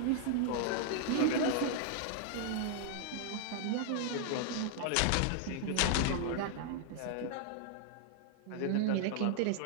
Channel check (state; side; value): different; both; correlation 0.00